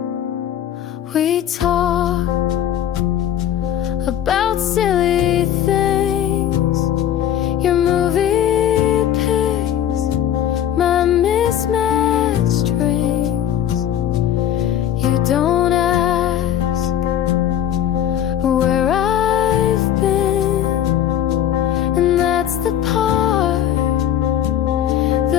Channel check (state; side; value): quieter; right; 10.5 dB